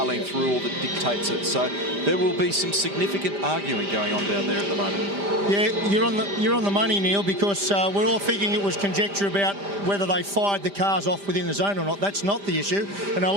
length rule that dictates it. So there will be some significant arguing going on down there at the moment. Yeah, you're on the money, Neil, because we're all thinking it was conjecture about whether they fired the cars off within the zone or not. That's not the issue. And I'll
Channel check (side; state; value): left; late; 5.0 ms